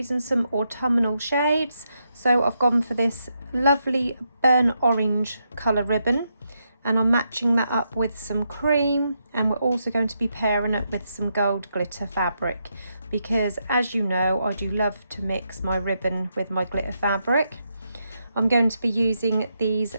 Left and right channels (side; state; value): both; inverted; correlation -0.82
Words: some autumnal shades, so I've gone for this lovely burnt orange colour ribbon and I'm matching that up with some cream, and we're also going to be pairing it with some gold glitter fabric because, as you know, I do love to mix my ribbon with my glitter fabric. I'm going to be using these